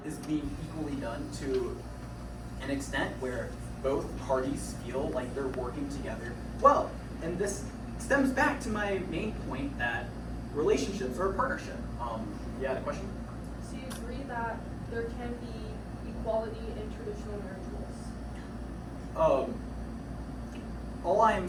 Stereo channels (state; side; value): identical; both; correlation 1.00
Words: is being equally done to an extent where both parties feel like they're working together well. And this stems back to my main point that relationships are a partnership. You had a question? So you agree that there can be equality in traditional marriage roles? All I'm